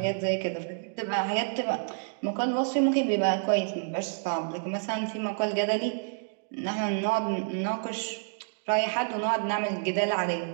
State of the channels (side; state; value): left; silent; digital silence